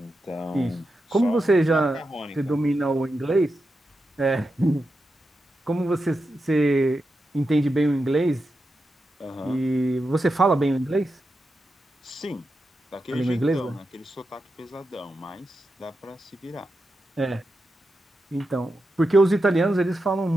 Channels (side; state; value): both; normal; correlation 0.88